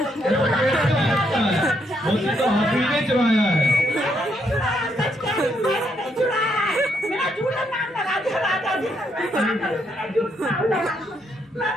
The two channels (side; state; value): both; normal; correlation 0.75